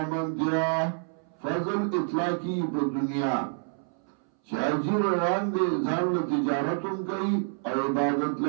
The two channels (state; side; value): silent; left; 59 dB below the other